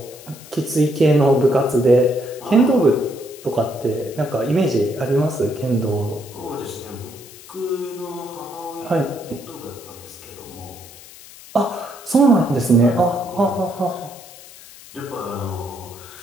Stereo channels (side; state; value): left; noise; hiss, 19 dB below the sound